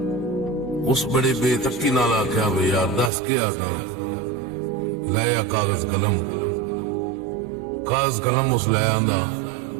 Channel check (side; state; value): left; drops out; at 3.1 s